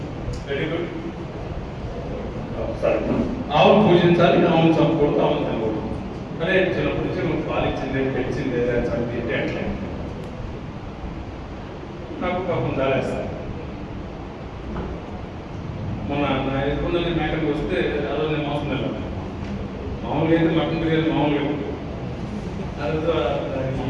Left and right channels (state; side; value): identical; both; correlation 1.00